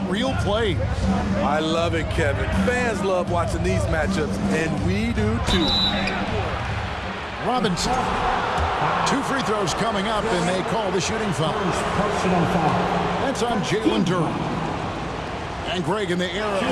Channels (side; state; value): both; identical; correlation 1.00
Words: reel plays. I love it, Kevin. Fans love watching these matchups, and we do too. Robinson. 2 free throws coming up, and they call the shooting foul. That's on Jalen Duren. And Greg, in the era